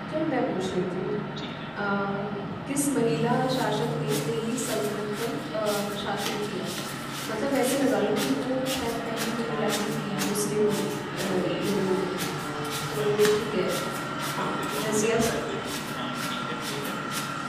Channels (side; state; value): left; noise; rumble, 27 dB below the sound